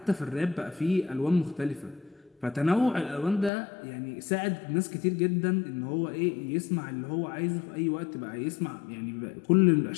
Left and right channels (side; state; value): right; drops out; at 3.5 s